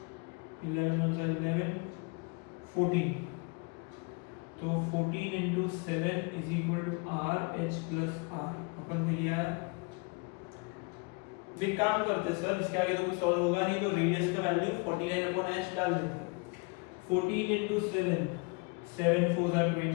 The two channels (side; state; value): right; quieter; 30.7 dB